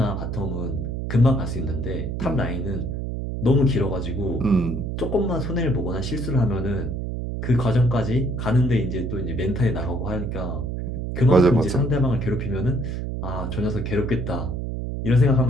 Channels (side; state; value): right; noise; hum, 4 dB below the sound